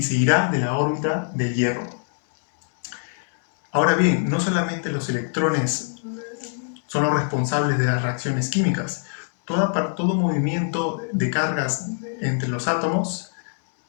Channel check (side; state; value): right; silent; 63 dB below the other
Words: se irá de la órbita del hierro. Ahora bien, no solamente los electrones son los responsables de las reacciones químicas. Todo movimiento de cargas entre los átomos,